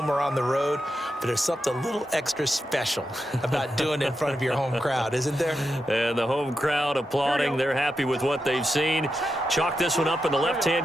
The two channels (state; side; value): normal; both; correlation 0.87